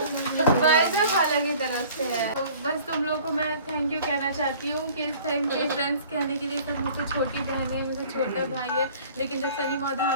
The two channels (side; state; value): both; inverted; correlation -0.49